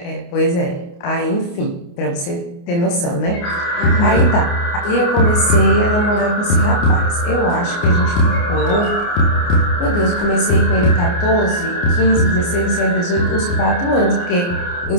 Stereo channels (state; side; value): late; right; 29 ms